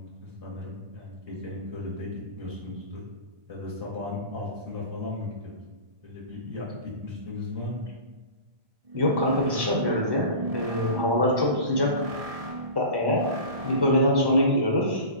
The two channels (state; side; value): late; left; 1.7 ms